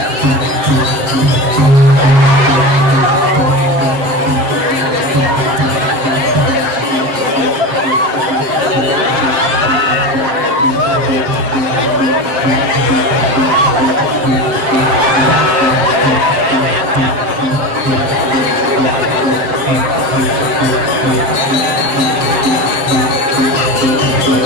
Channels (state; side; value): late; left; 7.4 ms